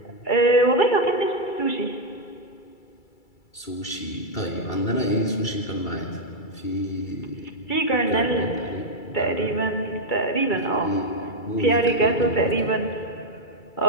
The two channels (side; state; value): right; late; 2.3 ms